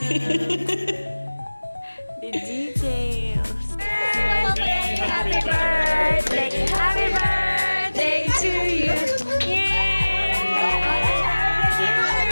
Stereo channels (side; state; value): both; inverted; correlation -1.00